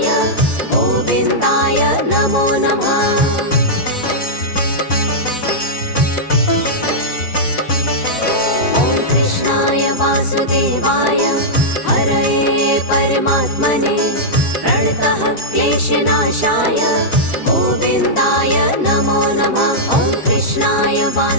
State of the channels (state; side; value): late; right; 4.0 ms